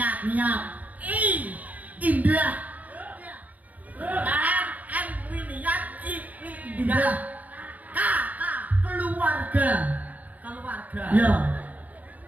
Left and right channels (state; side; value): late; left; 0.077 ms